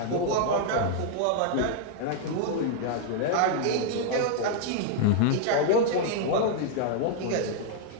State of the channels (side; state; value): both; different; correlation 0.00